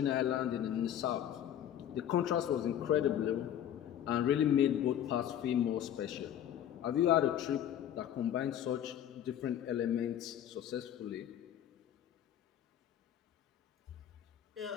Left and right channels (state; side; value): quieter; right; 10.5 dB